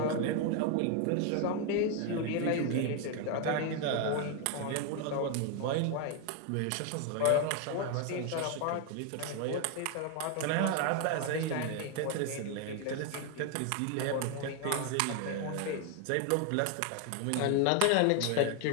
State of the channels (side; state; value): both; different; correlation 0.01